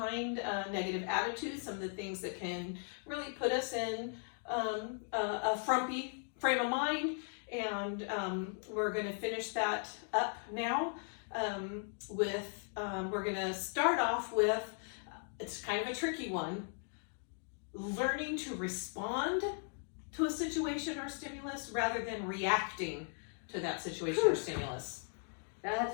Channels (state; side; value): silent; right; 53 dB below the other